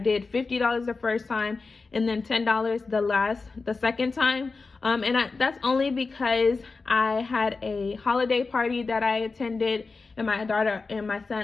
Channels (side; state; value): right; quieter; 4.1 dB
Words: $50 the first time and then $10 the second time. That's only because I had a holiday party that I attended, and my daughter and my